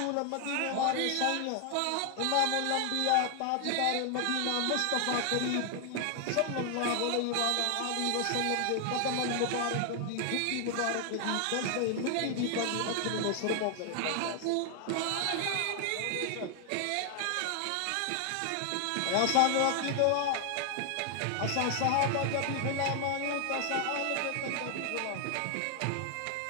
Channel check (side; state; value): both; different; correlation 0.00